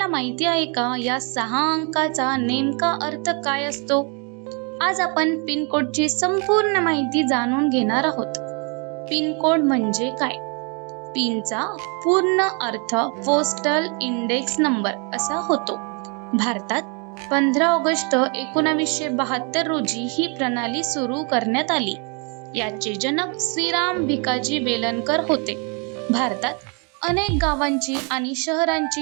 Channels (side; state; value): left; quieter; 35.4 dB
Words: माहिती आहे का, या 6 अंकाचा नेमका अर्थ काय असतो? आज आपण पिन कोडची संपूर्ण माहिती जाणून घेणार आहोत. पिन कोड म्हणजे काय? पिनचा पूर्ण अर्थ पोस्टल इंडेक्स नंबर असा होतो. भारतात 15 ऑगस्ट 1972 रोजी ही प्रणाली सुरू करण्यात आली. याचे जनक श्रीराम भिकाजी वेलणकर होते. भारतात अनेक गावांची आणि